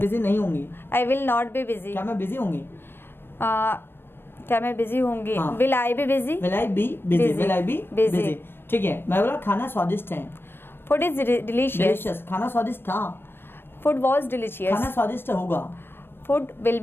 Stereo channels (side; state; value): right; late; 0.10 ms